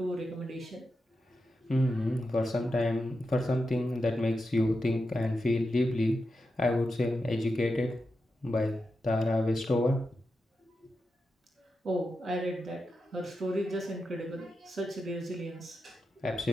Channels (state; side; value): normal; both; correlation 0.89